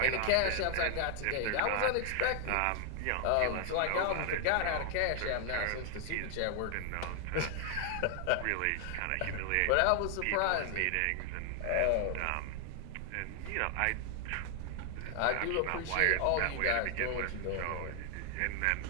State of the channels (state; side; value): different; both; correlation 0.00